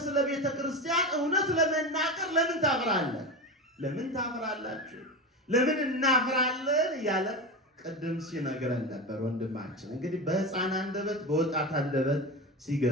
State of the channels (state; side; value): normal; both; correlation 0.22